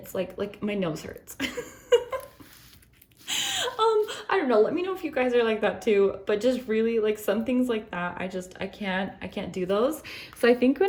like my nose hurts. I don't know, let me know if you guys are like that too, but just really like some things like that, I can't do those. So I think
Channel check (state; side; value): identical; both; correlation 1.00